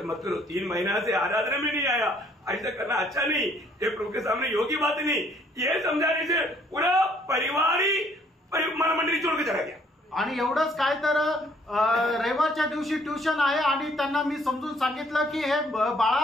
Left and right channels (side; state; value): both; normal; correlation 0.63